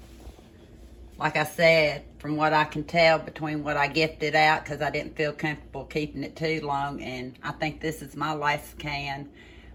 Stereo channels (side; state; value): both; identical; correlation 1.00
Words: Like I said, from what I can tell between what I gifted out, because I didn't feel comfortable keeping it too long, and I think this is my last can.